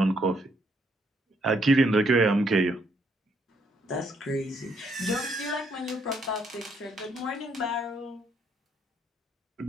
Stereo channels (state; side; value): normal; both; correlation 0.71